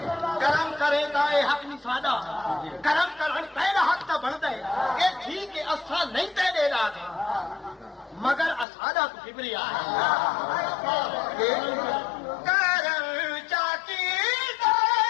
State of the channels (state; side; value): drops out; right; at 8.7 s